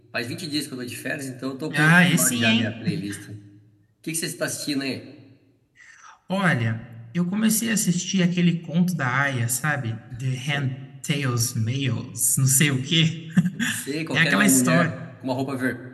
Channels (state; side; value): identical; both; correlation 1.00